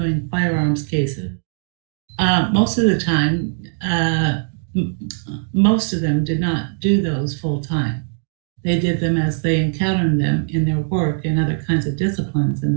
firearms cases. Most of the time, most of them did not do those full time. They did them as they encountered them in their work and other kinds of disciplines in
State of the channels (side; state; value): left; silent; 64 dB below the other